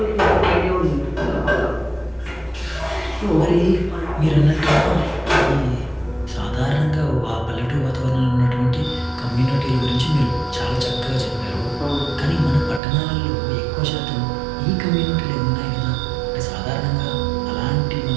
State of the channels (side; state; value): left; drops out; at 12.8 s